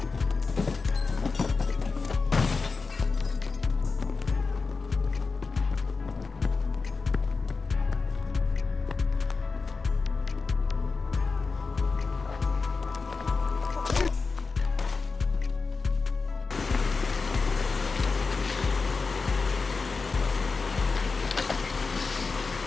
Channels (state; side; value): quieter; right; 4.4 dB